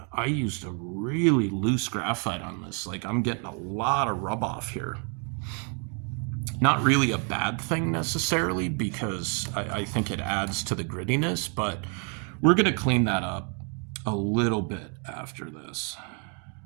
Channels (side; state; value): left; quieter; 38.8 dB